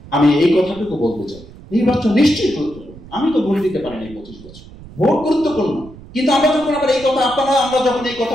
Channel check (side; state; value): right; noise; rumble, 19 dB below the sound